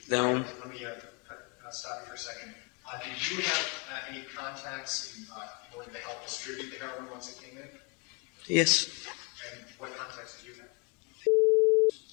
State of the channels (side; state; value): right; quieter; 31.9 dB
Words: then. Let me stop you for a second. Did you have any contacts in order to help distribute the heroin once it came in? Yes. And what contacts did you have?